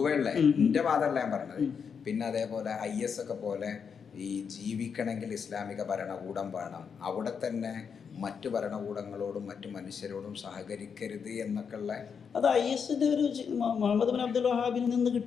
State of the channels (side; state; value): right; quieter; 6.5 dB